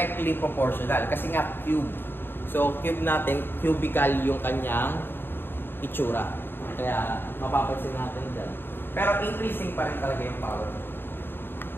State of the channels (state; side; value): late; right; 0.10 ms